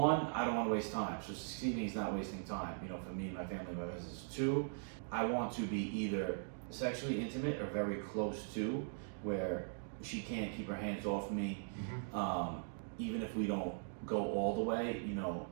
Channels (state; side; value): silent; left; digital silence